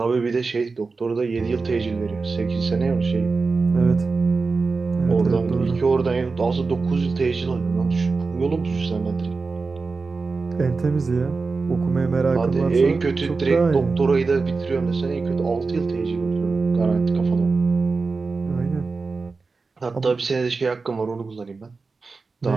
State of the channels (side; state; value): left; quieter; 4.2 dB